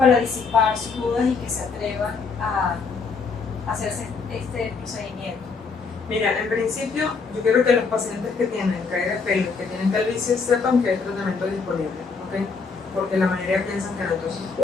disipar sus dudas y que se atrevan a hacerse este procedimiento? Mira, en principio, yo quiero que los pacientes que tienen caída de pelo, que tienen calvicie, sepan que hay tratamiento disponible, ¿ok? Porque la mayoría piensan que no. Entonces,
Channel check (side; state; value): right; quieter; 4.9 dB